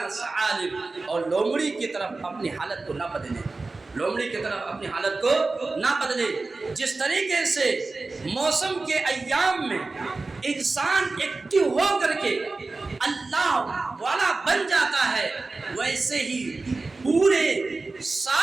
ثعالب، اور لومڑی کی طرف اپنی حالت کو نہ بدلے، لومڑی کی طرف اپنی حالت کو نہ بدلے۔ جس طریقے سے موسم کے ایام میں انسان ایکٹیو ہو کر کے اللہ والا بن جاتا ہے ویسے ہی پورے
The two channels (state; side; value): quieter; left; 3.6 dB